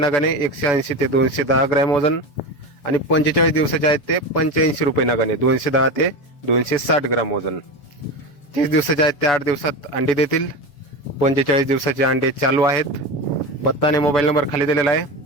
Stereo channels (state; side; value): late; right; 7.2 ms